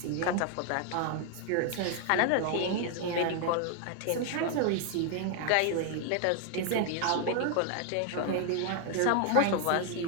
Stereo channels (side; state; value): both; different; correlation 0.00